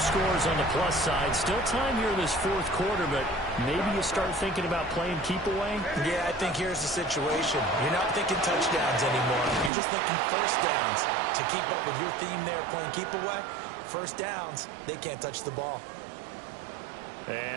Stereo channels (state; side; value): drops out; left; at 9.7 s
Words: on the plus side. Still time here in this fourth quarter, but maybe you start thinking about playing keep away? Yeah, I think here's the situation. You're not thinking touchdowns anymore. You're just thinking first downs. To keep up with your theme there, playing keep away, first downs, they can't touch the ball.